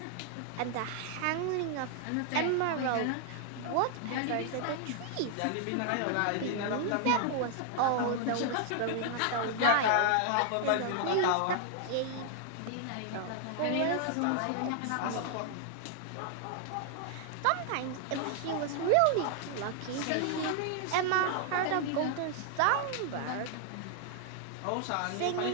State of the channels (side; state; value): both; different; correlation 0.00